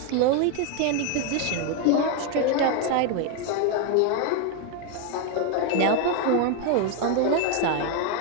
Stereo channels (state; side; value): different; both; correlation 0.01